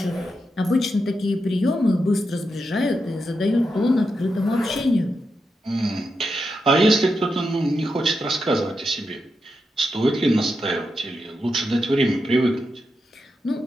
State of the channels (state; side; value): normal; both; correlation 0.86